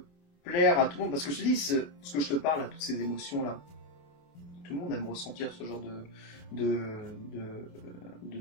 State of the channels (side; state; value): right; late; 28 ms